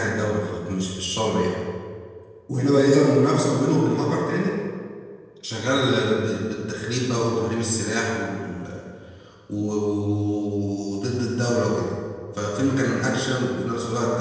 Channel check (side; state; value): both; identical; correlation 1.00